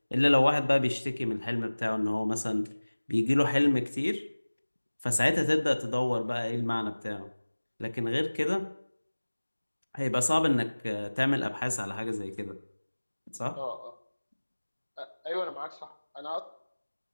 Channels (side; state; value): both; inverted; correlation -1.00